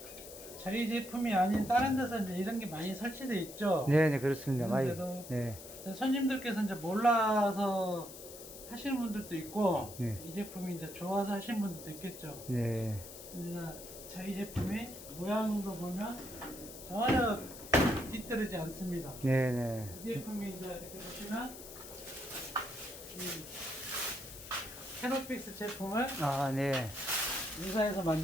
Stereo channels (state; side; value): noise; left; hiss, 14 dB below the sound